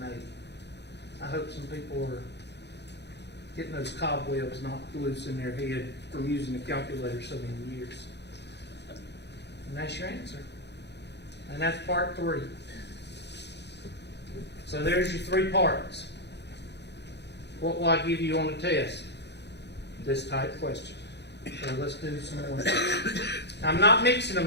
I hope some people are getting those cobwebs knocked loose in their head from using a calculator so many years. And that's your answer. And that's part 3. So there's your 3 parts. What will I give you on the test? This type question. So let's do some more. I'm not mixing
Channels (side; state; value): right; late; 0.50 ms